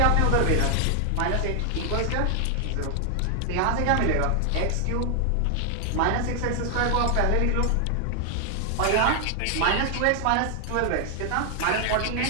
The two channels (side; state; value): both; different; correlation 0.00